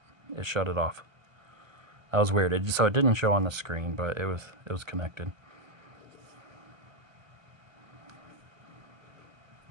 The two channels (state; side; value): late; left; 1.1 ms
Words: It shut it off. That was weird. So it didn't show on the screen, but it was connected.